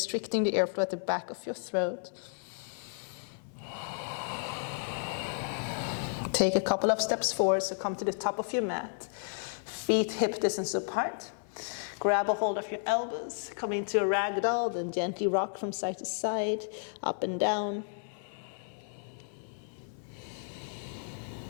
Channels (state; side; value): silent; right; 56 dB below the other